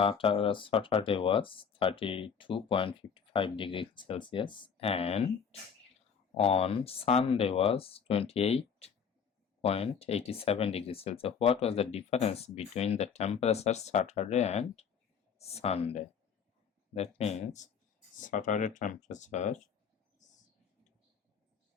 was 32.55 degrees Celsius and on Sunday was 28.87 degrees Celsius. What was the difference between the temperature Saturday and Sunday? That means Saturday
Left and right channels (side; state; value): right; quieter; 6.7 dB